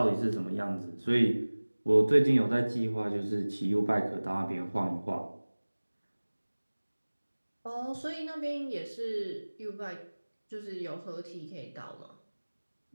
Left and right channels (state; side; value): inverted; both; correlation -1.00